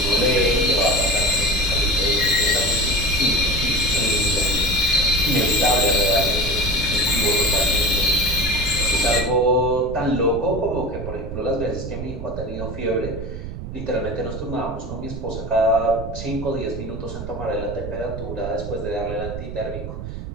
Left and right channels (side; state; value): right; noise; rumble, 8 dB below the sound